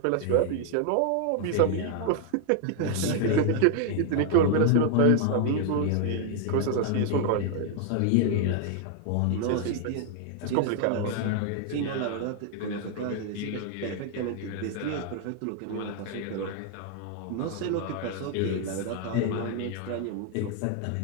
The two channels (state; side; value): different; both; correlation 0.00